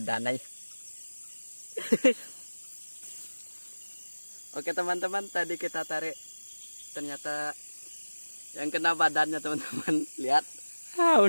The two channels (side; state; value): both; inverted; correlation -1.00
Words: aja. Oke teman-teman, tadi kita tarik, ternyata yang kena badannya teman-teman. Lihat,